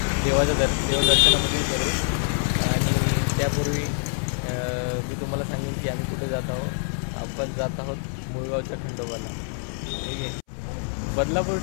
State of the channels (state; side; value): silent; right; 62 dB below the other